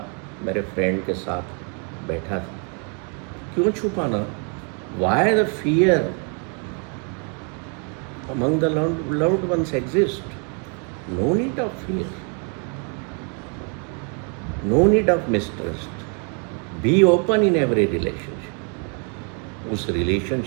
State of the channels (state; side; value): quieter; left; 38.3 dB